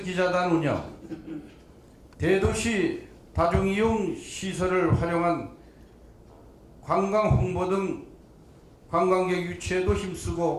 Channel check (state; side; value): identical; both; correlation 1.00